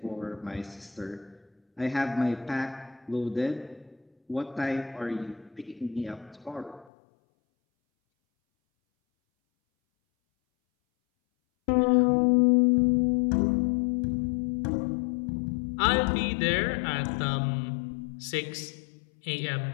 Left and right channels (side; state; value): right; drops out; at 6.9 s